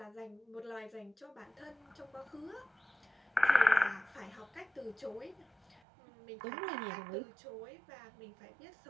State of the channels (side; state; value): left; drops out; at 5.8 s